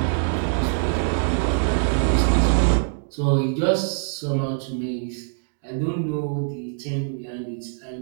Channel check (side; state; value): left; silent; digital silence